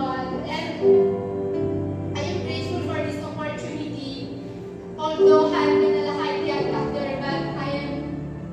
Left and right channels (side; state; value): both; identical; correlation 1.00